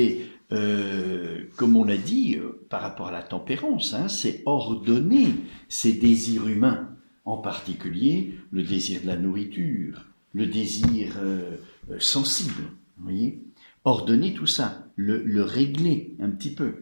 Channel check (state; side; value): inverted; both; correlation -1.00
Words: comme on l'a dit, par rapport à la tempérance, hein, c'est ordonner ses désirs humains, en particulier le désir de la nourriture, le désir sensible. Vous voyez? Ordonner tout ça, le régler un petit